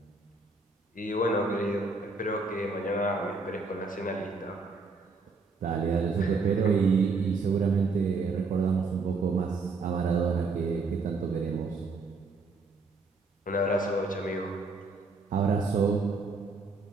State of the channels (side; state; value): left; quieter; 3.9 dB